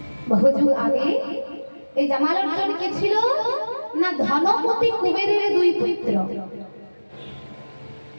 বহুযুগ আগে। এই জামাল অর্জুন কে ছিল না? ধনপতি কুবেরের দুই পুত্র।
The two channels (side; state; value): both; inverted; correlation -1.00